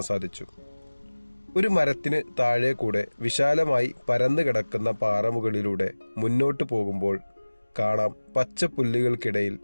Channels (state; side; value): inverted; both; correlation -1.00